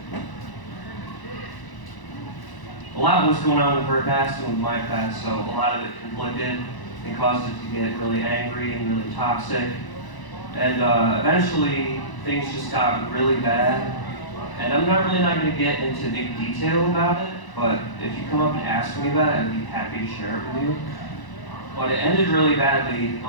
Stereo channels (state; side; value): late; right; 1.0 ms